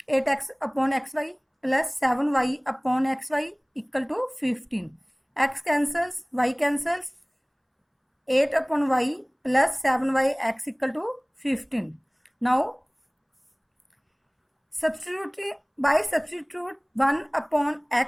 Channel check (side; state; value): both; identical; correlation 1.00